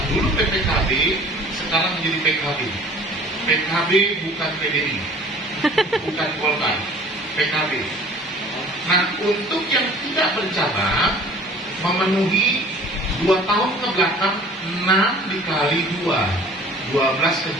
Dulu PPKB, sekarang menjadi PKB. PKB bukan PDI, bukan Golkar, PKB. Nah, untuk yang tidak bercabang, memenuhi 2 tahun ke belakang 6 dikali 2, 12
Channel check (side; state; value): both; normal; correlation 0.48